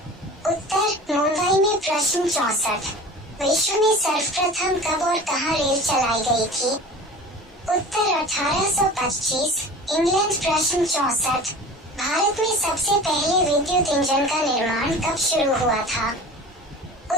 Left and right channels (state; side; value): normal; both; correlation 0.38